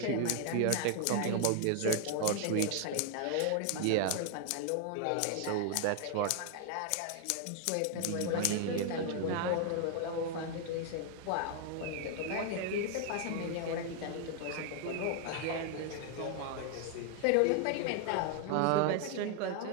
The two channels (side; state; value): both; different; correlation 0.00